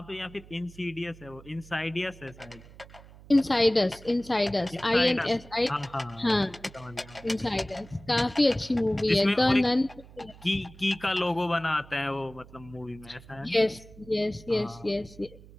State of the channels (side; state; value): right; noise; hum, 21 dB below the sound